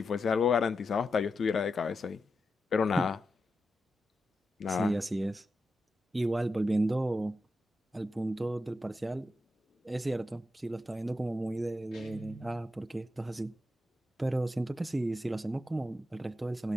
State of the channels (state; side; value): normal; both; correlation 0.88